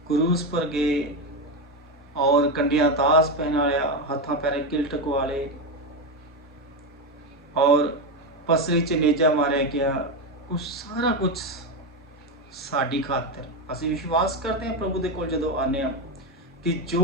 क्रूस पर गए और कंडिया दास पहनाया, हाथा पैरे किल टकवाले और पसरी च नेजा मारे गया, उस सारा कुछ साड़ी खातिर असं विश्वास करते हैं प्रभु दे कोल जदों आने कि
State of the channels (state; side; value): normal; both; correlation 0.12